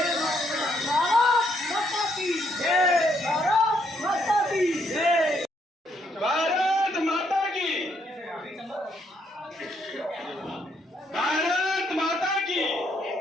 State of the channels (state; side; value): normal; both; correlation 0.73